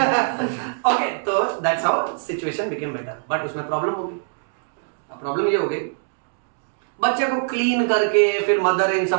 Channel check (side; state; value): left; silent; digital silence